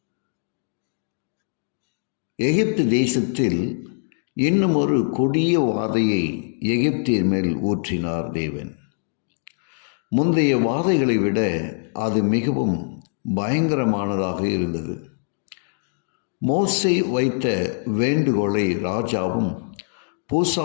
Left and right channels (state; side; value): silent; right; digital silence